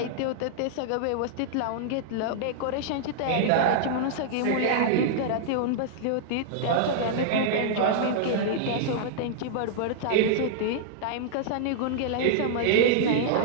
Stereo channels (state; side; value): different; both; correlation -0.02